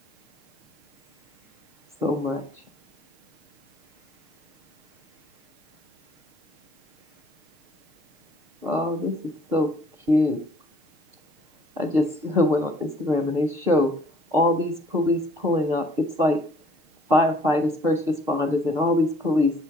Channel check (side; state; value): left; late; 6.5 ms